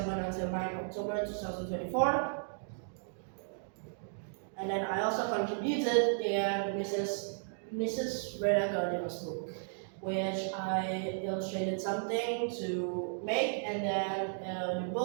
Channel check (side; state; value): left; silent; digital silence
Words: until 9 October 2024. And then I also contributed in Mrs. Rena Gardner's book, which I illustrated something to make, and then the